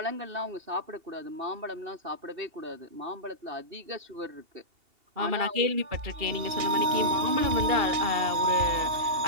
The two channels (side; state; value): left; late; 2.8 ms